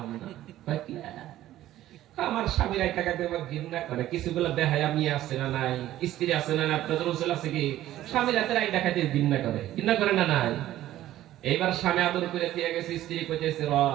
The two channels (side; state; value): left; quieter; 13.9 dB